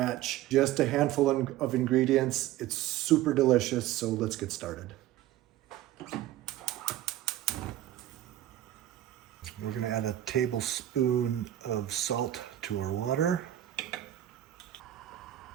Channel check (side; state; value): left; quieter; 13.5 dB